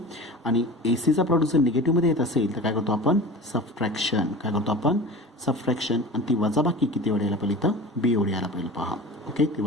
आणि एसीचा प्रॉडक्ट जर निगेटिव्हमध्ये येत असेल तर काय करतो आपण? सबट्रॅक्शन. आणि ती वजाबाकी किती एवढी यायला पाहिजे इथं? B एवढी यायला पाहिजे पहा. ओके, ती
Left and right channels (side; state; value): both; normal; correlation 0.35